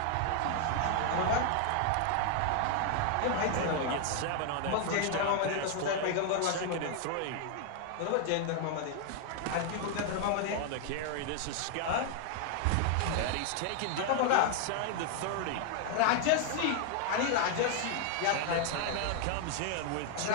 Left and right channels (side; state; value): both; different; correlation 0.00